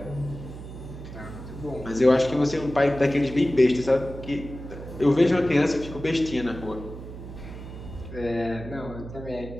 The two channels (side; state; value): right; noise; hum, 12 dB below the sound